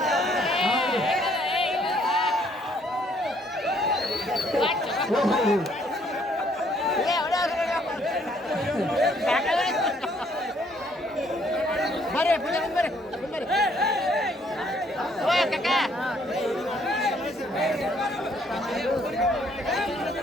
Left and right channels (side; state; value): both; normal; correlation 0.66